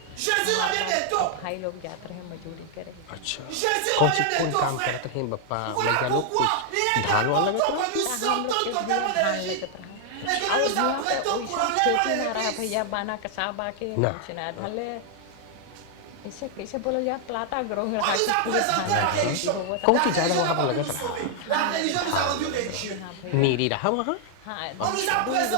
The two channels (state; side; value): different; both; correlation 0.00